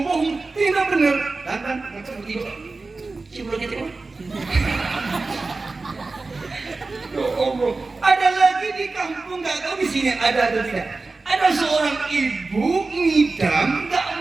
tidak benar. Kan, begitu. Cium bulu ketek. Ya Allah, ada lagi di kampung, nggak tahu di sini ada atau tidak. Ada seorang ibu ngidam, nggak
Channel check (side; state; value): left; quieter; 3.7 dB